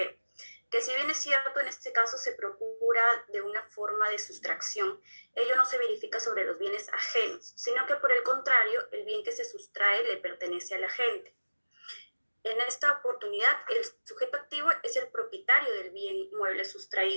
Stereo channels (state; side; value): inverted; both; correlation -1.00